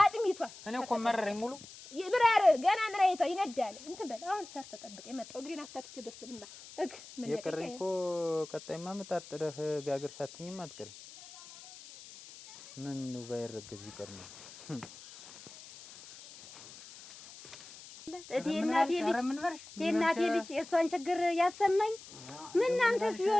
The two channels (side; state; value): left; noise; hiss, 17 dB below the sound